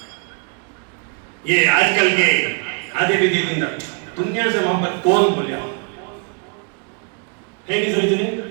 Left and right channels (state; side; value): quieter; left; 37.9 dB